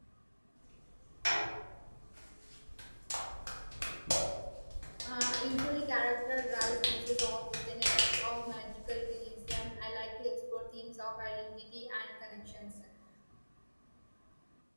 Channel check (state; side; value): inverted; both; correlation -1.00